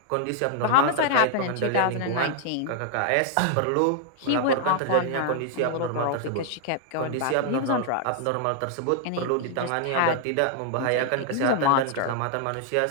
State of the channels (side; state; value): both; different; correlation 0.00